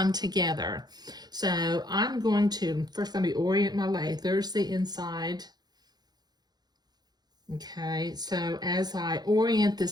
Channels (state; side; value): late; left; 0.20 ms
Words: together. So I'm going to, first let me orient my lace. There's the inside. Okay, so as I orient